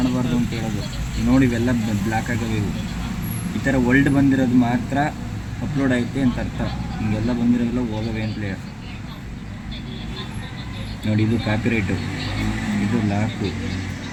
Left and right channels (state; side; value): identical; both; correlation 1.00